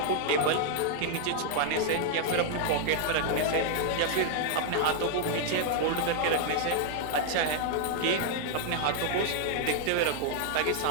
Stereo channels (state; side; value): different; both; correlation 0.00